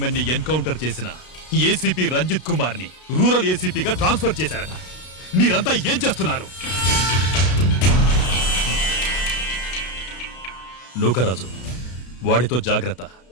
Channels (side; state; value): right; late; 32 ms